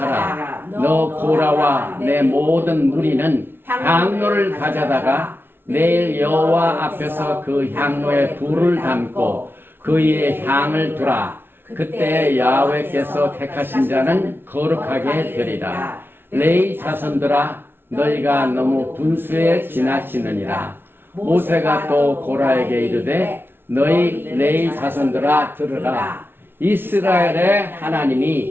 너 고라와 내 모든 무리는 향로를 가져다가 내일 여호와 앞에서 그 향로에 불을 담고 그 위에 향을 두라. 그때 야훼께서 택하신 자는 거룩하게 되리라. 레위 자손들아 너희가 너무 분수에 지나치느니라. 모세가 또 고라에게 이르되 너희 레위 자손들아 들으라. 이스라엘의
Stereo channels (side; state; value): left; late; 0.11 ms